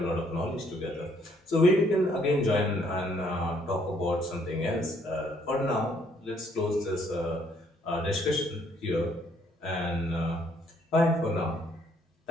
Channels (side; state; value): both; normal; correlation 0.67